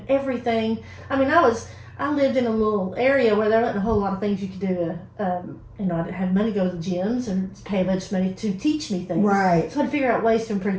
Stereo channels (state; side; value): identical; both; correlation 1.00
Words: everything. I mean, I lived in a little area where there wasn't a whole lot of things you could do. I didn't have money to go to the gyms and pay a bunch of money to teach me things. Right. So I had to figure out ways to improve